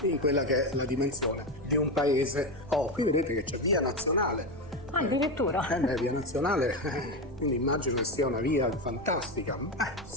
in quella che è la dimensione di un paese. Qui vedete che c'è Via Nazionale. Addirittura? Via Nazionale, quindi immagino che sia una via fantastica.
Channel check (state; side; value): noise; right; rumble, 19 dB below the sound